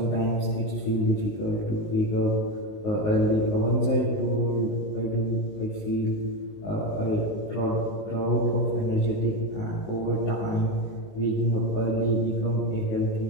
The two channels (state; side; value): late; right; 19 ms